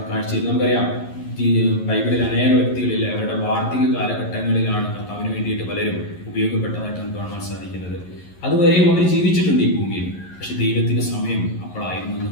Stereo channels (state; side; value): late; right; 11 ms